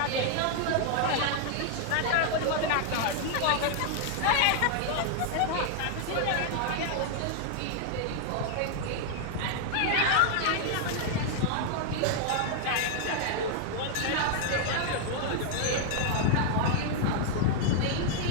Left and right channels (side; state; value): both; different; correlation 0.00